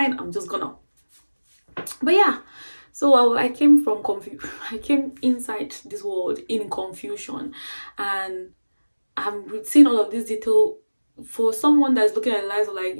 I'm just gonna. But yeah, so I came from I came inside this world in confusion, and I'm seeing all of this detail. For someone that's looking at lives like,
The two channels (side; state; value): both; inverted; correlation -1.00